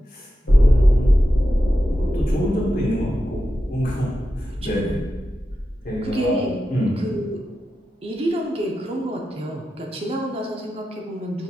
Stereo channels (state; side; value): normal; both; correlation 0.90